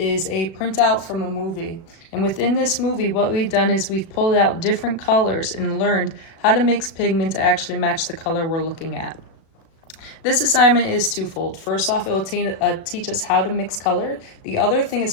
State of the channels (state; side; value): late; right; 36 ms